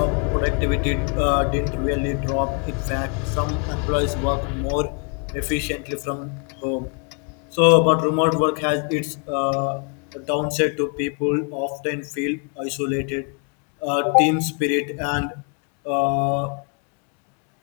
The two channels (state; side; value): quieter; right; 37.6 dB